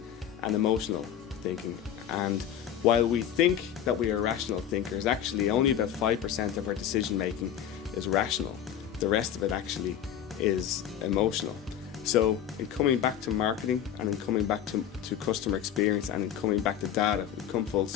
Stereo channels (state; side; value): quieter; right; 9.8 dB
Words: and emotional thinking, and while we think that we are rational thinkers, actually only about 5% of our decision making is rational. The rest of it actually is emotional. So in coming back to marketing and in coming back to customer experience and in coming back to data, we come full